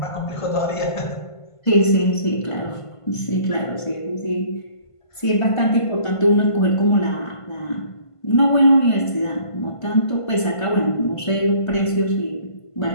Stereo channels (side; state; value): right; late; 1.5 ms